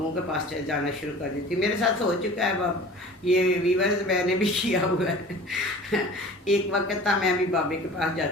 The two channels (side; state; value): both; normal; correlation 0.42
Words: के पास जाना शुरू कर देती। मेरे साथ हो चुका है बाब, ये वीवर्स मैंने भी किया हुआ है। एक वक्त था मैं भी बाबे के पास